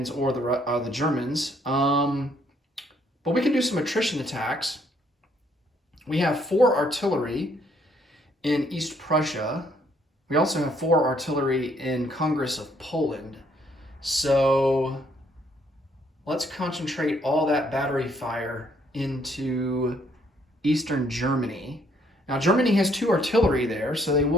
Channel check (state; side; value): normal; both; correlation 0.67